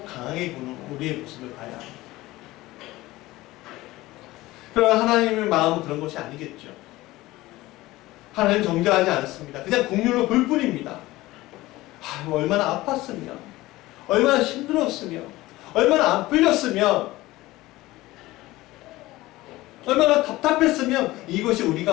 강하게 보는 우리의 모습을 봐야 합니다. 그러나 하나님의 마음은 그런 것이 아니겠죠. 하나님 정죄하지 않습니다. 그냥 긍휼로 볼 뿐입니다. 얼마나 아팠으면, 얼마나 힘들었으면, 얼마나 안 풀렸으면, 얼마나 답답했으면 이것이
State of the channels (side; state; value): right; quieter; 18.3 dB